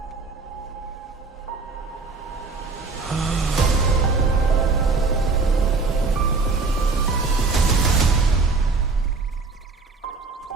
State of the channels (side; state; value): left; quieter; 4.1 dB